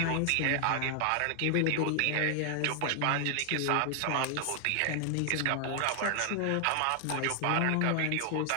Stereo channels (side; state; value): both; different; correlation 0.00